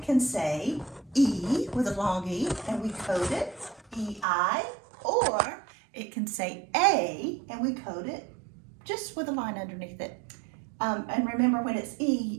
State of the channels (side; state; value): left; drops out; at 4.2 s